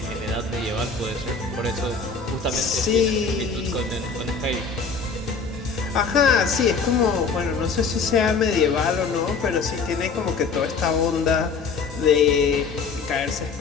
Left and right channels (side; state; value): right; quieter; 5.0 dB